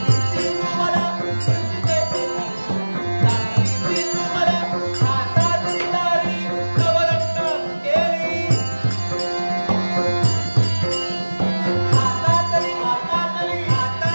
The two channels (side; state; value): both; inverted; correlation -1.00